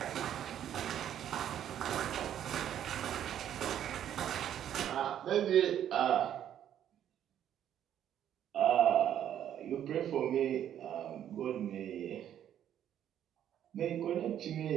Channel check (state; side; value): quieter; left; 10.4 dB